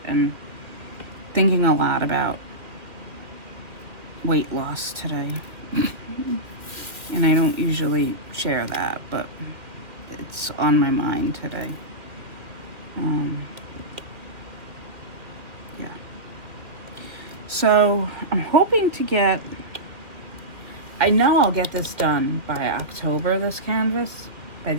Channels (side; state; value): left; late; 2.4 ms